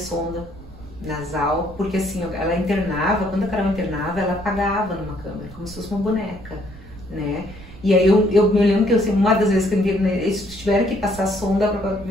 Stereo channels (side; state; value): right; noise; rumble, 17 dB below the sound